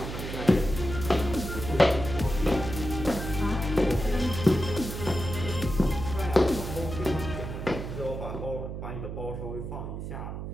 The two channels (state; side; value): noise; right; hum, 7 dB below the sound